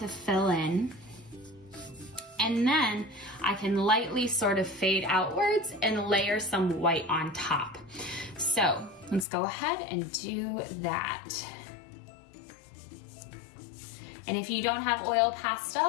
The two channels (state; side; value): drops out; right; at 9.2 s